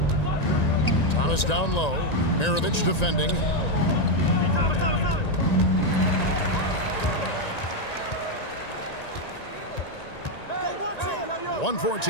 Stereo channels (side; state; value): right; late; 1.9 ms